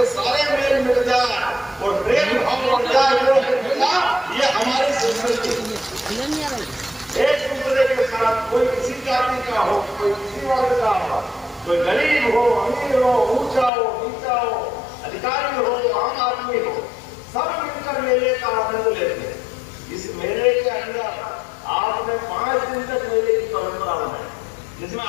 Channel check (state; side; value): drops out; right; at 13.7 s